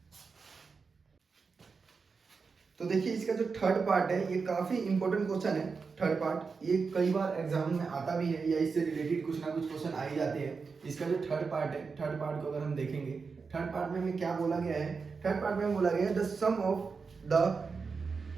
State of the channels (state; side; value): quieter; left; 5.0 dB